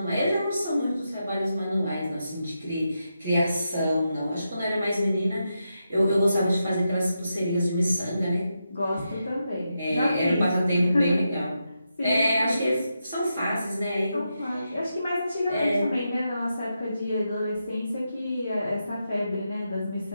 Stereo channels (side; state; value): both; inverted; correlation -0.86